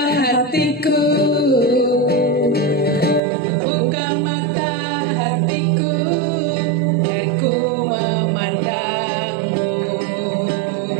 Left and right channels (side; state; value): left; drops out; at 3.2 s